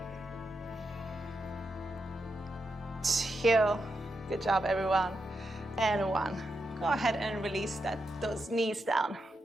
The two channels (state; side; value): normal; both; correlation 0.85